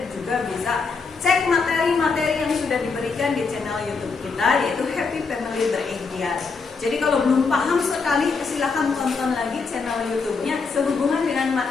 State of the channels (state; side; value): quieter; right; 4.7 dB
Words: juga bisa cek materi-materi yang sudah diberikan di channel YouTube kita, yaitu Happy Family Berikhtiar. Jadi kalau belum paham sekali, silahkan tonton lagi channel YouTube-nya sehubungan dengan